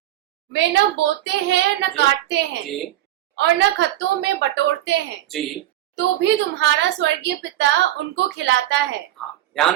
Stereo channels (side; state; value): left; quieter; 13.7 dB